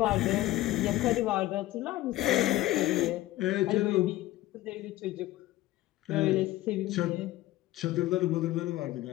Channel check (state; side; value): quieter; right; 16.3 dB